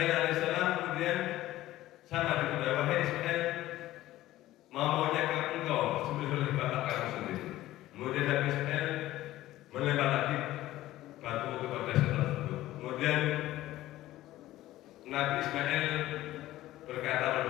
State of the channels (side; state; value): right; quieter; 15.5 dB